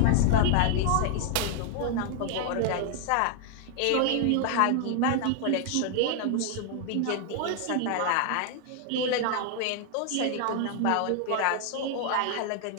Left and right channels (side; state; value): both; different; correlation 0.00